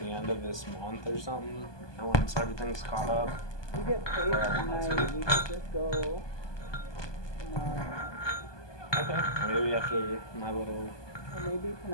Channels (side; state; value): right; late; 1.2 ms